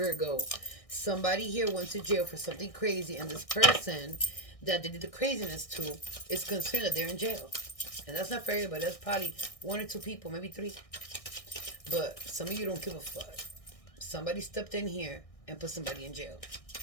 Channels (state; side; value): late; right; 1.6 ms